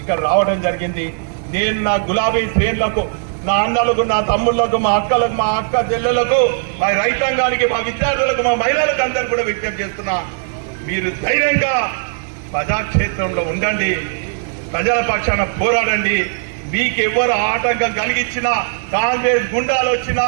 ఇక్కడ రావడం జరిగింది. నేను నా గులాబీ శ్రేణులకు, నా అన్నలకు, నా తమ్ముళ్లకు, మా అక్కలకు, మా అక్క చెల్లెలకు, మా రైతాంగానికి, మా విద్యార్థులకు, మా మహిళలకు అందరూ కూడా విజ్ఞప్తి చేస్తున్నా, మీరు ధైర్యంగా ప్రజాక్షేత్రంలో ఉండండి, ప్రజల పక్షాన పోరాడండి. మీకు ఎవరు ఆటంకం కలిగించినా, కాంగ్రెస్ గుండాలు వచ్చినా,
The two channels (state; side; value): silent; left; digital silence